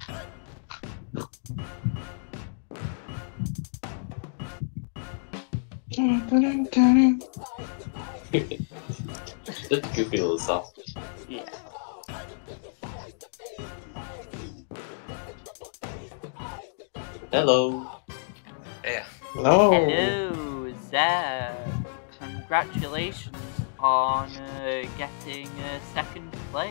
Just goofy little stuff. Yeah. Hello. Yeah. Hello. Hello, Zeb. Congratulations on getting second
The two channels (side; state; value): right; silent; digital silence